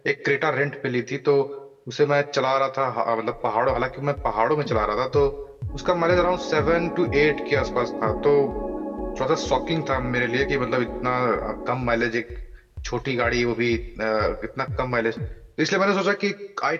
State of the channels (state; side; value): identical; both; correlation 1.00